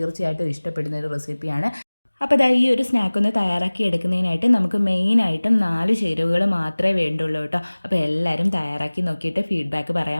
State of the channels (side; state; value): both; inverted; correlation -1.00